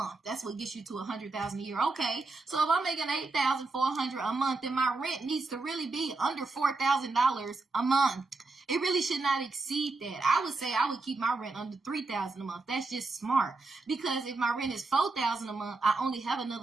That's what gets you to $100,000 a year. Okay, so if I'm making $8,400 a month, then my rent needs to really be under $4,000 a month. It really should not exceed that. I would say I would keep my rent under $3,000 a month. That's just smart. Because if my rent is $4,000 a month, I only have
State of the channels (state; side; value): quieter; left; 3.5 dB